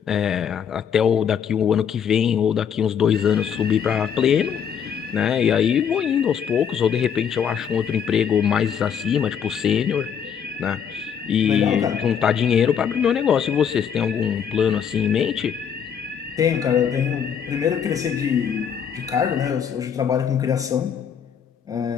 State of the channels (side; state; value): right; quieter; 7.8 dB